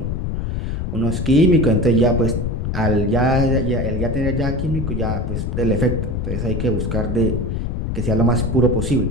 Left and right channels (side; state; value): left; noise; rumble, 2 dB below the sound